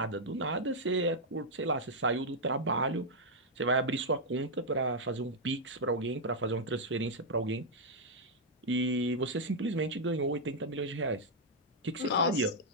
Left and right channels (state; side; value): normal; both; correlation -0.04